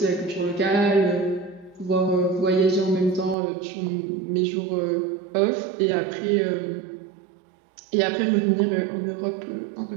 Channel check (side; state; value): left; drops out; at 3.4 s